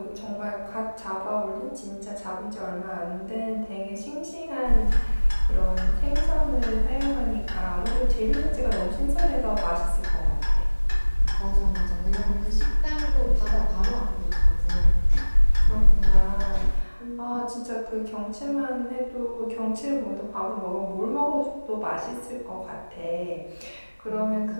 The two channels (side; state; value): both; inverted; correlation -1.00